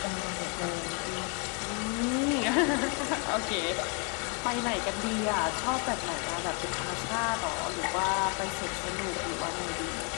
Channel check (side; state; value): right; quieter; 35.6 dB